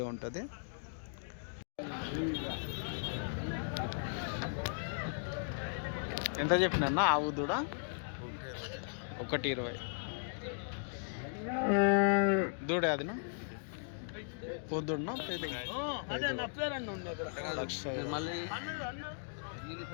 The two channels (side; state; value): right; silent; digital silence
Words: ఉంటుంది. ఎంత చెప్పినా ఆవు దూడ? 1,20,000 దూడ. అదినా పొద్దున్న